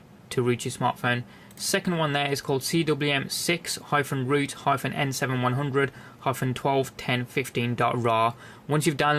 to root your smartphone. Second one there is called CWM6-root-N7100-121015.rar. Once you've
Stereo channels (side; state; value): both; identical; correlation 1.00